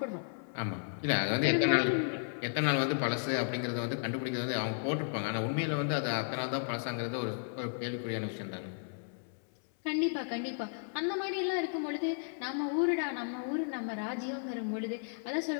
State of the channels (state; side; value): silent; right; 55 dB below the other